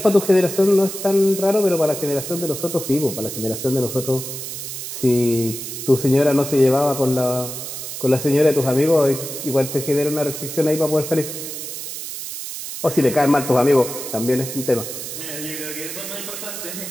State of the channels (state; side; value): noise; right; hiss, 8 dB below the sound